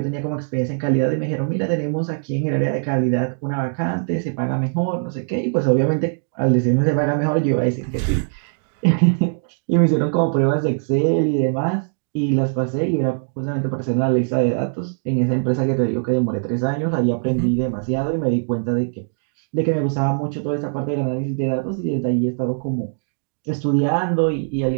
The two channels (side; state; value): left; silent; digital silence